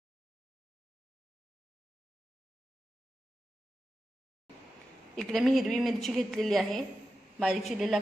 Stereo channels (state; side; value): normal; both; correlation 0.91